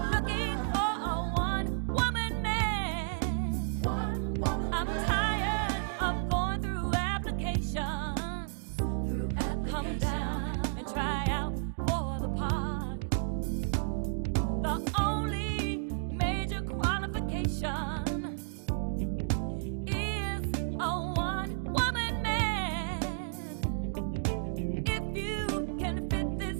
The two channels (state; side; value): silent; left; digital silence